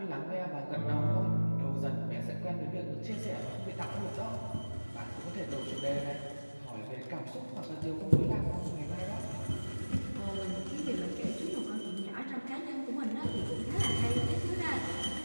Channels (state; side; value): inverted; both; correlation -1.00